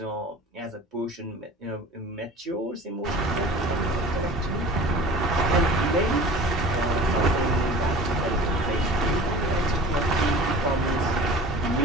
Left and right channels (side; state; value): both; normal; correlation 0.41